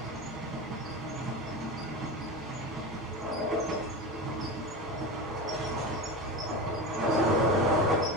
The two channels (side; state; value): both; normal; correlation 0.25